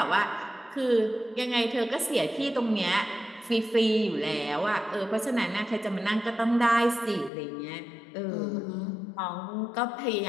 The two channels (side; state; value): right; drops out; at 7.3 s